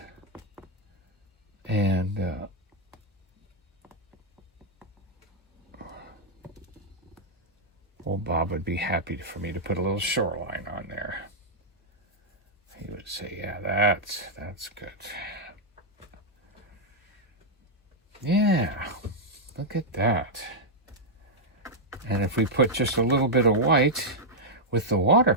And old Bob would be happy for me to put a little shoreline on there. He would say, yeah, that's good. Yeah, look at that. And if we put just a little bit of white with the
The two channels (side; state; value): both; normal; correlation -0.04